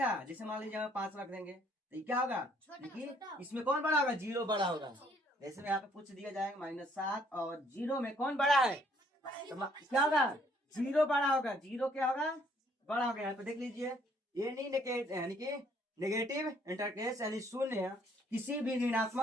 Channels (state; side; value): normal; both; correlation 0.65